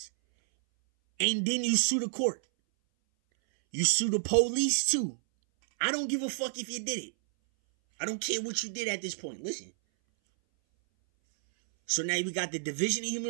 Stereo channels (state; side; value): silent; left; 58 dB below the other